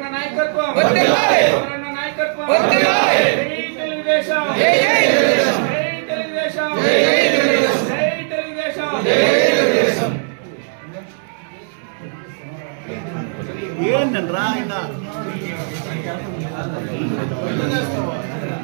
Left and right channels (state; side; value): silent; left; digital silence